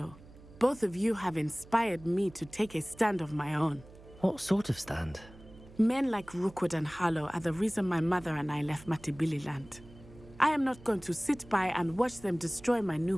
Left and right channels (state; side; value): noise; right; hum, 21 dB below the sound